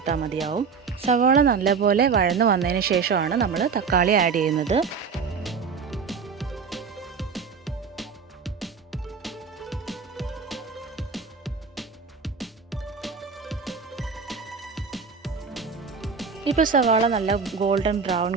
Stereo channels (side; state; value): left; quieter; 5.6 dB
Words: മതിയാവും. സവാള നല്ലപോലെ വഴന്ന് വന്നതിന് ശേഷമാണ് നമ്മൾ തക്കാളി ആഡ് ചെയ്യുന്നത്. ഇപ്പോൾ സവാള നല്ല ഗോൾഡൻ ബ്രൗൺ